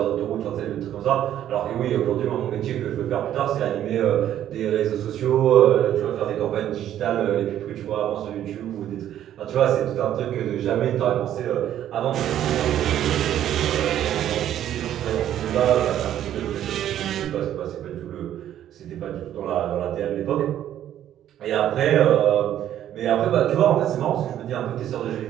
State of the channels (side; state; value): left; quieter; 11.3 dB